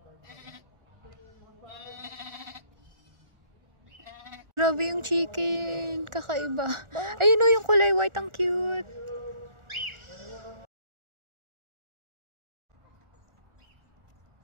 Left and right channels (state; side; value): late; left; 1.4 ms